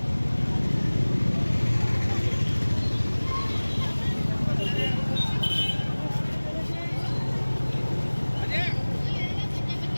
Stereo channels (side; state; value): both; inverted; correlation -1.00